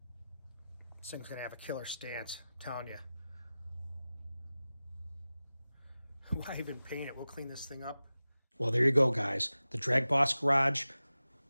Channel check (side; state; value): both; inverted; correlation -0.96